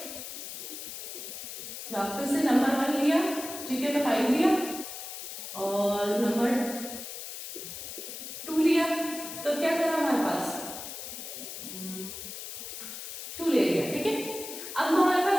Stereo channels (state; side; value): noise; left; hiss, 9 dB below the sound